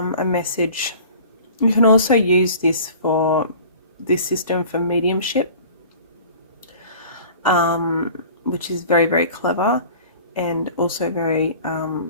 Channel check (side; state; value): both; inverted; correlation -0.44